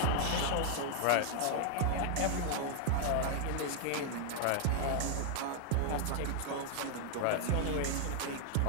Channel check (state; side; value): different; both; correlation 0.00